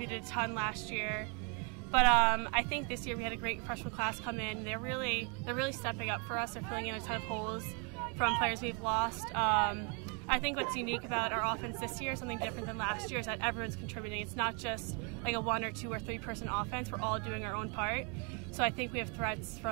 a ton last year. But I think this year we had a great freshman class come in. They're really stepping up for us. They're filling in a ton of holes from players we've lost. I think what's unique about our offense this year, something different than last year, is that everyone's contributing. It's not just like a 1 or 2 or 3 person offense. We're all doing our own part. So I think we have threats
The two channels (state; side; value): quieter; left; 35.6 dB